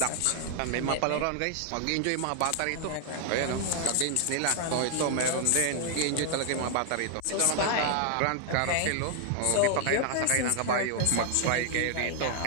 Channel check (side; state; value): both; different; correlation 0.00